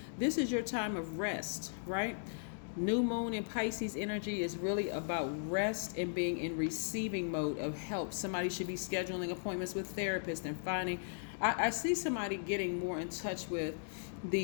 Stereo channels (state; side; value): silent; right; digital silence